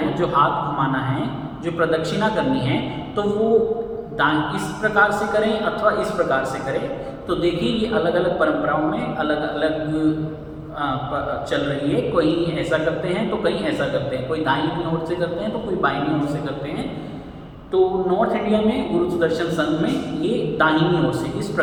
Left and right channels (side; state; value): both; identical; correlation 1.00